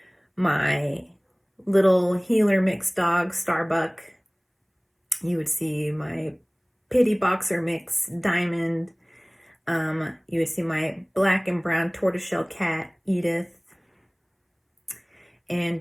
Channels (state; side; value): identical; both; correlation 1.00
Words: my little healer mix dog Starbuck, you would see my pity boxer mix Diamond, you would see my black and brown tortoiseshell cat Edith,